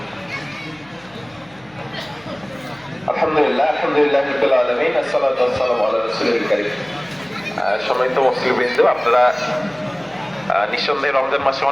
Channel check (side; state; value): left; noise; hum, 28 dB below the sound